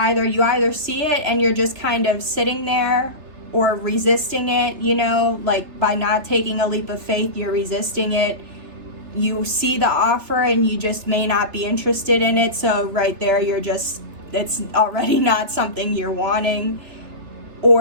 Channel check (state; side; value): late; left; 3.3 ms